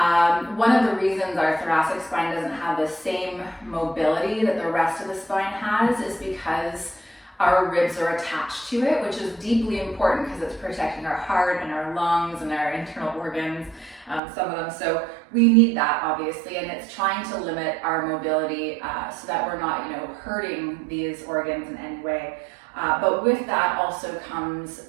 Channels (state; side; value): drops out; left; at 14.2 s